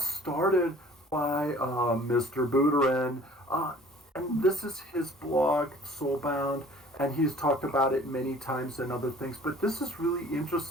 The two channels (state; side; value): normal; both; correlation 0.51